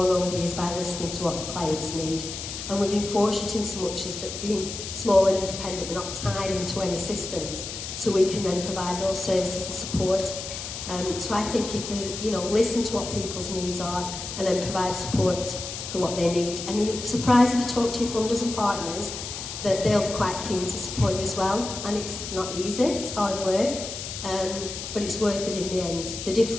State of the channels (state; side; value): noise; left; hiss, 7 dB below the sound